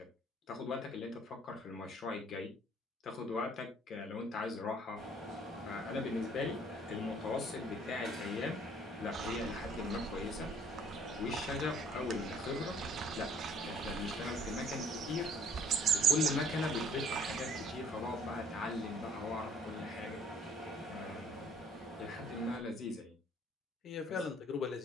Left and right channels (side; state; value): both; normal; correlation 0.59